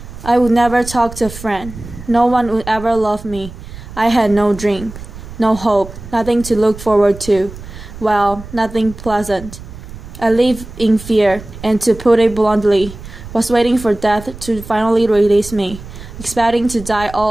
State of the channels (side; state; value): right; noise; rumble, 14 dB below the sound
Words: I would never talk to a friend. No one would ever love me. I had no dream, no hope, nothing to look forward to. Well, nothing pleasant. I lived in fear, and to put it bluntly, was waiting for death to finally release me, expecting to die